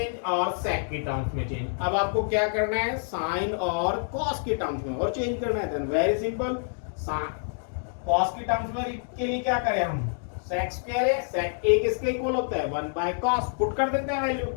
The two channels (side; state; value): right; silent; digital silence